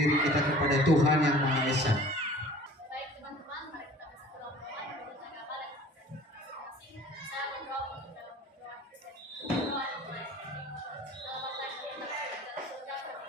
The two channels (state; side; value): normal; both; correlation 0.47